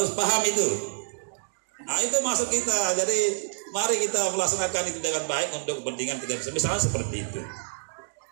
paham itu. Nah itu masuk kita. Jadi mari kita melaksanakan itu dengan baik untuk kepentingan kita misalnya seperti itu.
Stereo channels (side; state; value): left; silent; digital silence